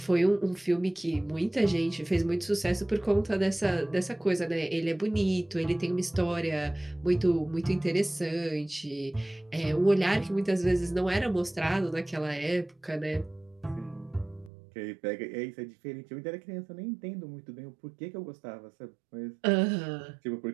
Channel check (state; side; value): drops out; left; at 14.5 s